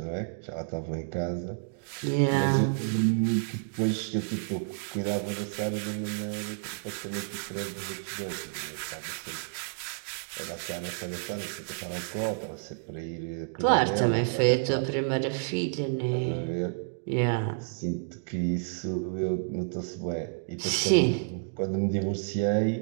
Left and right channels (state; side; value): silent; left; digital silence